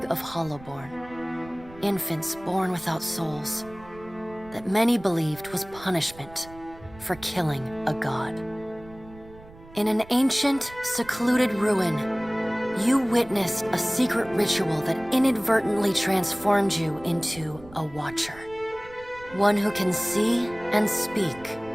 of hollowborn, infants born without souls, that many believed was punishment for killing a god. In an ancient, secluded ruin, you witnessed a secret ritual that inadvertently transformed you into a watcher. One who can see and speak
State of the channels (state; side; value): noise; right; rumble, 20 dB below the sound